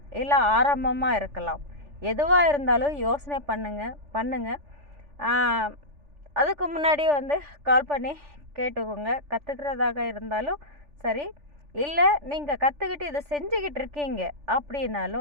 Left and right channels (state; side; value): late; left; 3.4 ms